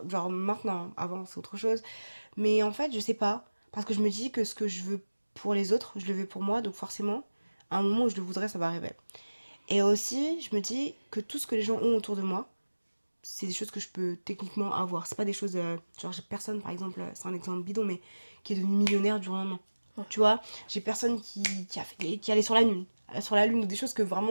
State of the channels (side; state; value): both; inverted; correlation -1.00